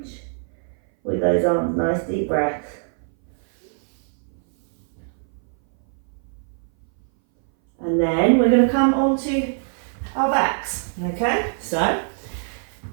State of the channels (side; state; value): left; silent; 60 dB below the other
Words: with those arms, nice deep breaths. And then we're going to come onto our backs, okay? So,